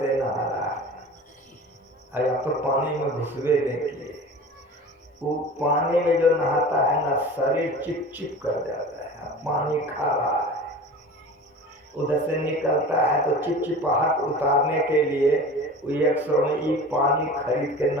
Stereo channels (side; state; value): both; normal; correlation 0.37